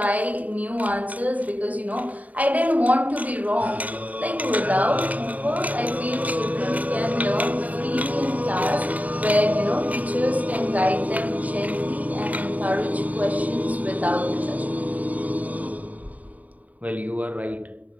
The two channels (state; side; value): late; left; 0.073 ms